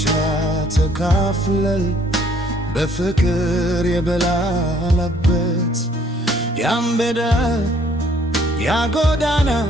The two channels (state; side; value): normal; both; correlation 0.62